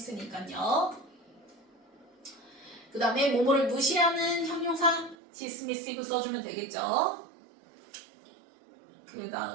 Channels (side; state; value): left; drops out; at 5.2 s